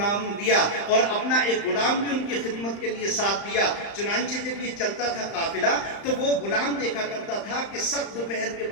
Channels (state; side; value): late; right; 35 ms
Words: دیا اور اپنا ایک غلام بھی ان کی خدمت کے لیے ساتھ دیا۔ چنانچہ جب یہ چلتا تھا قافلہ تو وہ غلام دیکھا کرتا تھا کہ سخت دوپہر کے